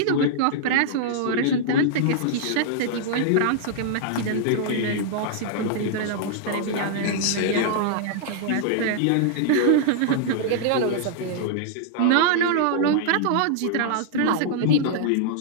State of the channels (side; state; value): both; different; correlation -0.01